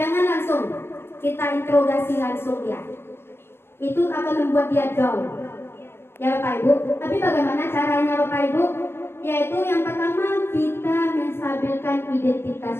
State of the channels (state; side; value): late; right; 0.11 ms